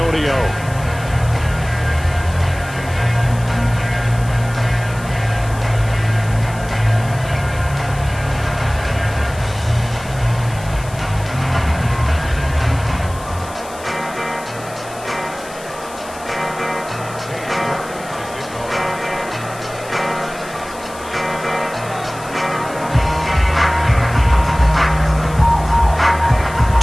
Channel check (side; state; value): left; noise; hiss, 18 dB below the sound